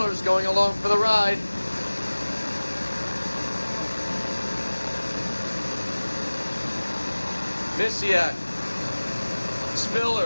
going along for the ride. Misiak,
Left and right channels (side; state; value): both; inverted; correlation -1.00